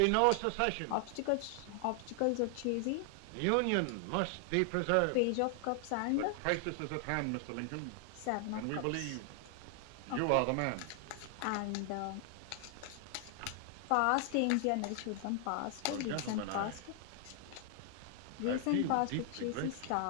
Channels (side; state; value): both; different; correlation 0.00